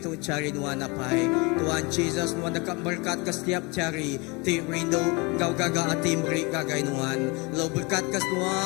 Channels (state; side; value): quieter; right; 26.8 dB